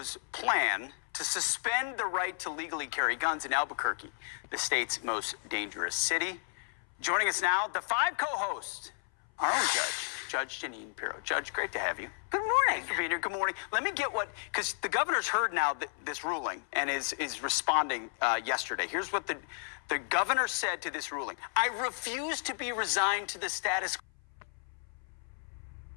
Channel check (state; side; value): silent; right; 56 dB below the other